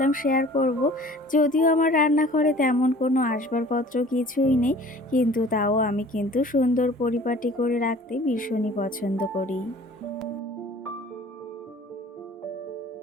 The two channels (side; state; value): both; normal; correlation 0.48